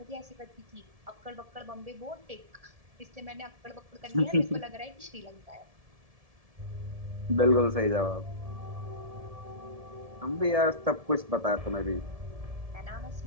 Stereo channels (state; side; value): late; left; 1.7 ms